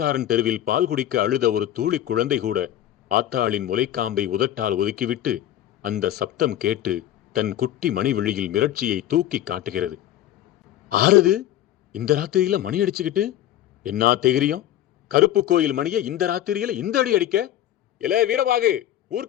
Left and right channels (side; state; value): right; quieter; 12.4 dB